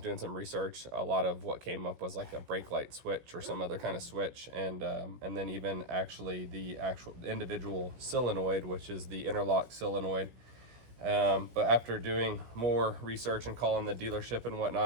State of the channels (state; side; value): late; left; 17 ms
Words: some research, a lot of what came up was like a brake light switch or some other kind of switch. And then even actually the actual individual solenoid, which is the interlock solenoid. But after doing more research and calling the dealership and